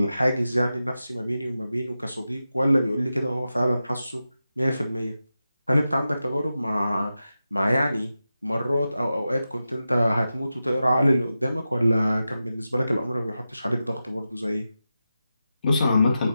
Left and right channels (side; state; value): both; inverted; correlation -0.92